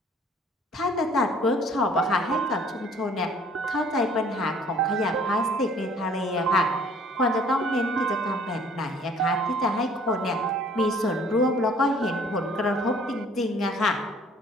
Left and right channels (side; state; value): both; normal; correlation 0.55